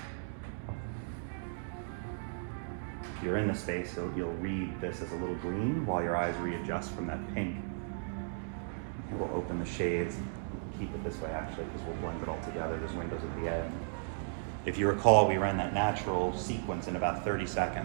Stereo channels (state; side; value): silent; left; digital silence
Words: if you're in the space, you'll read this as a little green while your eyes readjust from that pink. We'll open the shades, keep it this way actually, because we'll blend it all together. There's windows at the end. If you recall, we ran that natural sequence in about 30